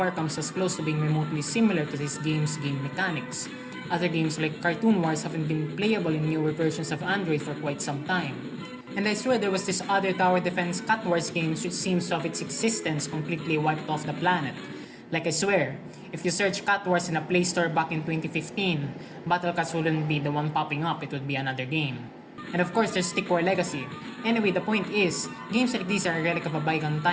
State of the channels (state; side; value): identical; both; correlation 1.00